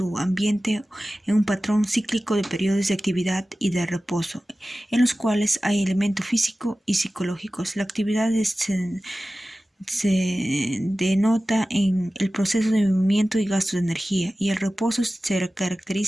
ambiente en un patrón cíclico de periodos de actividad y de reposo, en los cuales hay elementos físicos y psicológicos. La actividad se denota en el proceso de movimiento y gasto de energía, y el reposo se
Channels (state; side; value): normal; both; correlation 0.96